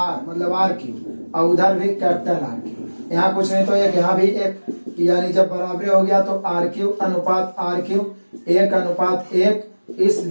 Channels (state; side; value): inverted; both; correlation -1.00